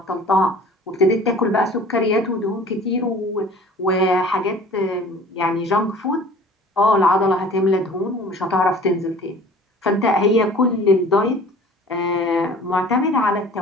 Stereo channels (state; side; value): normal; both; correlation 0.46